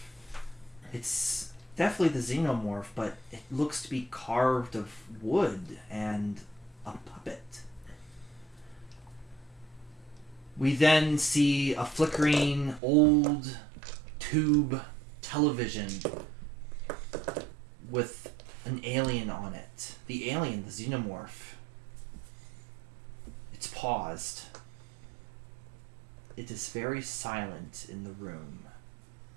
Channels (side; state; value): left; drops out; at 12.8 s